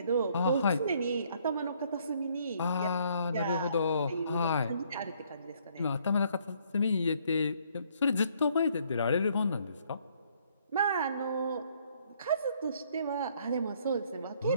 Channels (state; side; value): inverted; both; correlation -0.66